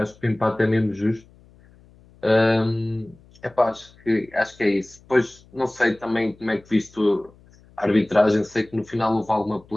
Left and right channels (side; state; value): left; noise; hum, 27 dB below the sound